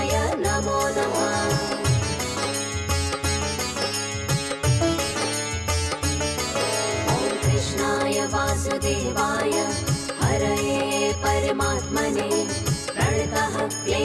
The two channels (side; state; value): both; identical; correlation 1.00